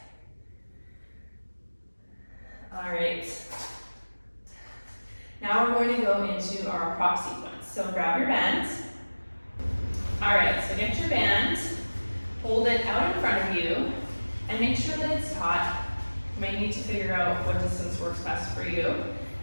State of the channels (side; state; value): both; inverted; correlation -1.00